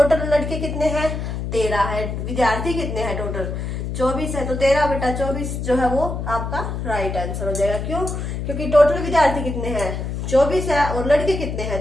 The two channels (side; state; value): left; noise; hum, 4 dB below the sound